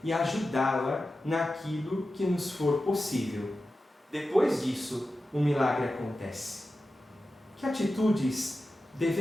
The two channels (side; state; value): both; normal; correlation 0.93